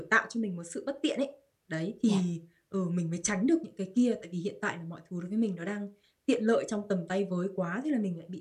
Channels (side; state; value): both; identical; correlation 1.00